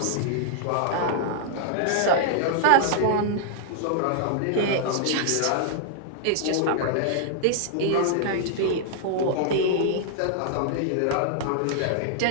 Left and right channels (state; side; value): different; both; correlation -0.01